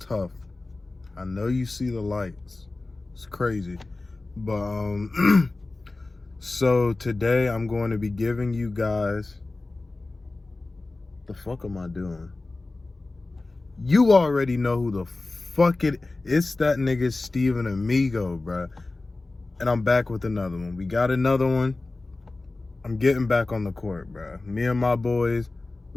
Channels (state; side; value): quieter; right; 3.2 dB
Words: tough. I know you see the lights. It's crazy. But, so today I'm going to be giving you guys, the fuck am I doing? You already know who the fuck it's that nigga Steven Amigo, bruh. And I'm back with another one. We got another one. I'm getting back on the court, bruh. Me and my boys,